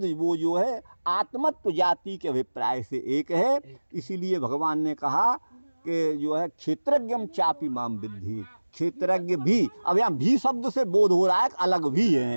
वो जो है आत्मत्व जाति के अभिप्राय से एक है। इसीलिए भगवान ने कहा कि जो है क्षेत्रज्ञम चापि माम विद्धि, क्षेत्रज्ञ भी, अब यहाँ भी शब्द से बोध हो रहा है अलग भी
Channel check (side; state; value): both; inverted; correlation -1.00